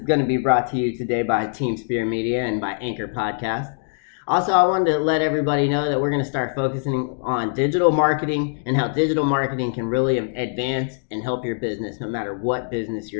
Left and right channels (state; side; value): silent; right; digital silence